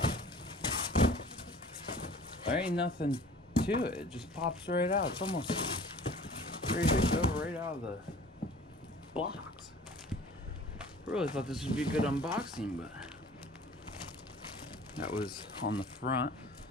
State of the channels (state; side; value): normal; both; correlation 0.47